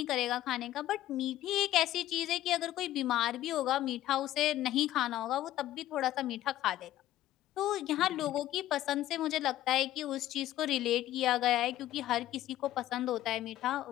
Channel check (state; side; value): quieter; right; 13.9 dB